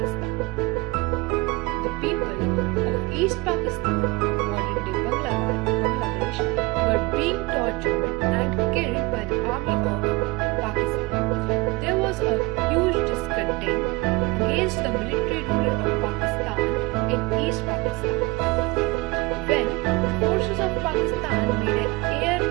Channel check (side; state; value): left; quieter; 23.9 dB